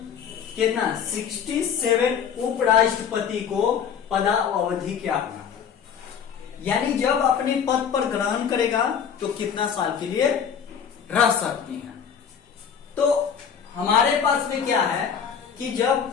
कितना 67 उपराष्ट्रपति को पदावधि क्या होगा, यानी जब अपने पद पर ग्रहण करेगा तो कितना साल के लिए रह सकती हैं। तो हमारे पास में क्या है कि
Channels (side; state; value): right; quieter; 7.5 dB